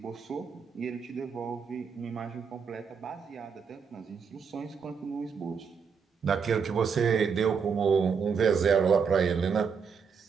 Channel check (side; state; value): left; quieter; 6.1 dB